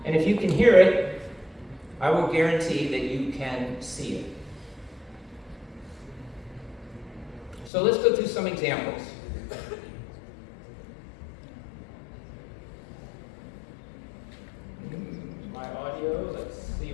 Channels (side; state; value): right; drops out; at 7.7 s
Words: And if you can hear it, I will guarantee that you can see it. So let's go through some examples. My audio, let's see